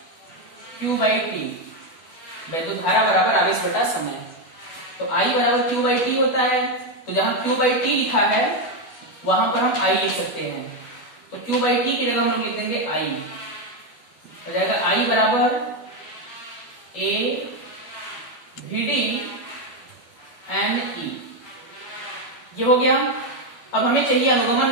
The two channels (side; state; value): right; late; 12 ms